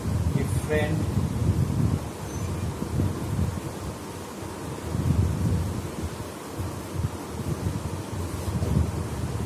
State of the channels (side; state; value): both; identical; correlation 1.00